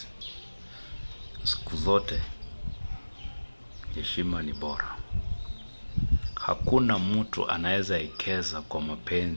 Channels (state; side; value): inverted; both; correlation -1.00